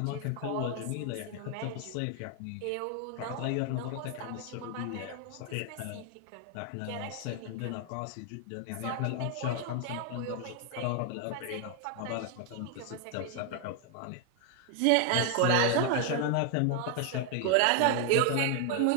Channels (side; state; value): both; different; correlation 0.00